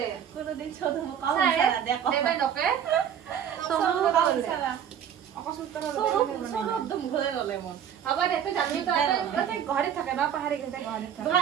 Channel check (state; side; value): quieter; left; 9.0 dB